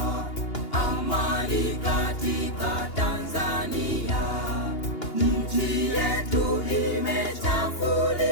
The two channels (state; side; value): late; right; 2.8 ms